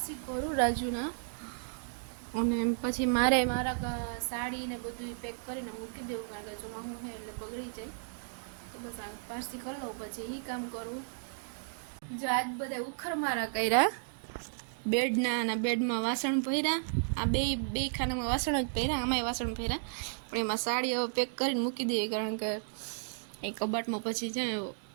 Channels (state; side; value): silent; left; digital silence